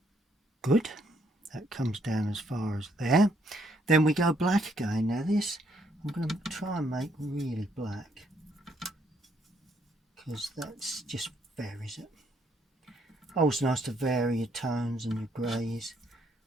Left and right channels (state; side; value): normal; both; correlation 0.70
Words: Good, that comes down as far as there. Then we go black again. Now this I'm going to try and make really black, because that's just varies it. Always nice to vary your tones and your greys.